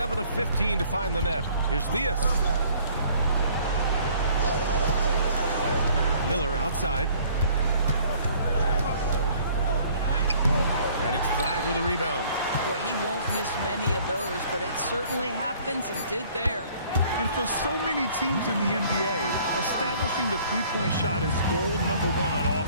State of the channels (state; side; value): inverted; both; correlation -0.56